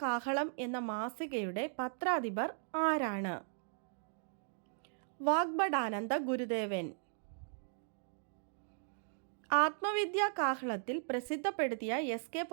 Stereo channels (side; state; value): left; silent; digital silence